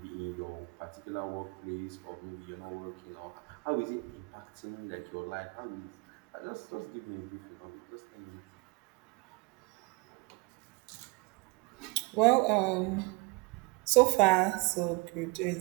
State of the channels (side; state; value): left; quieter; 27.8 dB